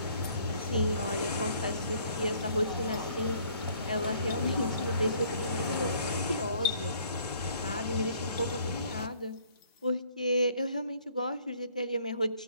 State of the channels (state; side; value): inverted; both; correlation -0.61